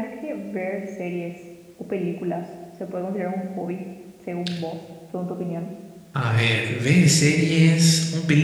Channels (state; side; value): identical; both; correlation 1.00